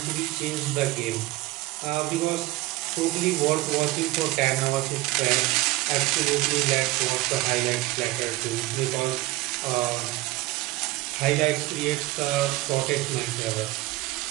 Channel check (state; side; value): quieter; left; 18.9 dB